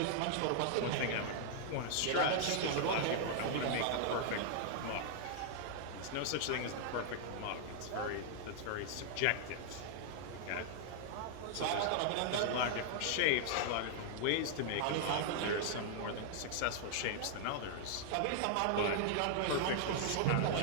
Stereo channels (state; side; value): different; both; correlation -0.01